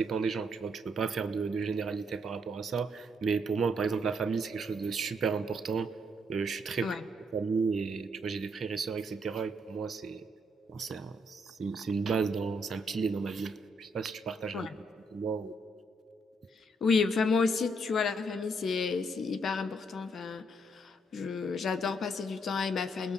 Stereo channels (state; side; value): normal; both; correlation 0.73